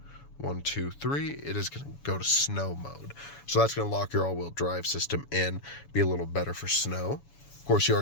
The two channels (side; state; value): right; late; 7.1 ms